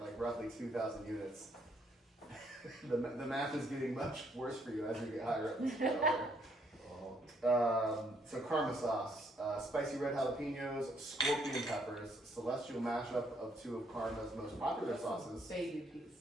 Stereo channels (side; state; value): both; normal; correlation 0.70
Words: like roughly 2,000 units. the math is getting much worse for you as you get higher up the scale. So Karma sauce, spicy red jalapenos, scorpion peppers, celestial mashup of 2 of Karma's most popular sauces. Baby piece.